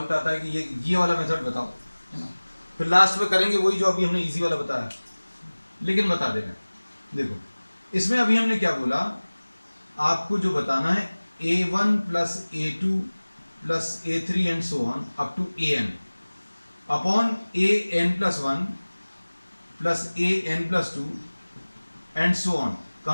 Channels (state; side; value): inverted; both; correlation -1.00